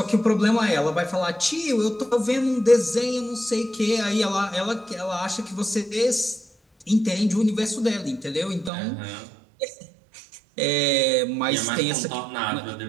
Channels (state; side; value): drops out; left; at 8.7 s